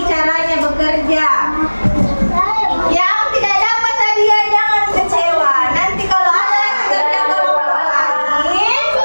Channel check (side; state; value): both; inverted; correlation -1.00